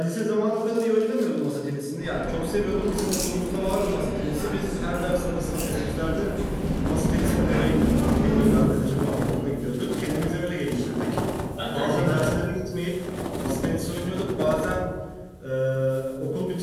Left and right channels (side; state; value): both; identical; correlation 1.00